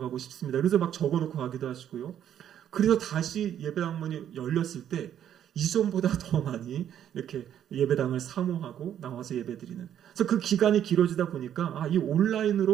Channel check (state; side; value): quieter; left; 10.1 dB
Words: 싶습니다. 그래서 막 적어놓고 가기도 하시고요. 그래서 다시 예배당 문이 열렸을 때 이전보다 더 많이 이렇게 예배당을 사모하고 나와서 예배드리는. 그래서 그 기간이 길어지다 보니까 이